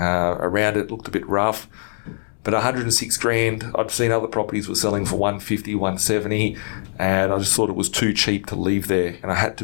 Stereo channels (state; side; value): silent; right; digital silence